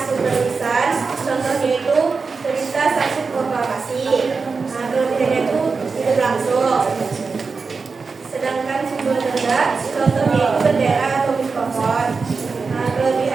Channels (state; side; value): quieter; left; 4.7 dB